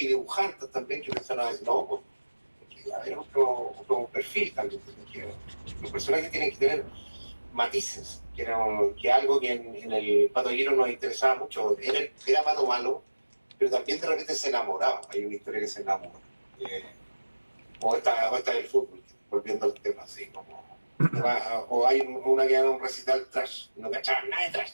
y dibujantes también que empezaron a decir, no, pues, hay otro perfil también, que los personajes tienen que tener matices, que algo que en el Pato Giro nos interesaba mucho, era Pato malo, pero también de repente se enamoraba, hay una historia que se enamora, o esta del fútbol, volviendo al tema así, como, o hay una que era un recital trash, no cachaban nada de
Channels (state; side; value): inverted; both; correlation -1.00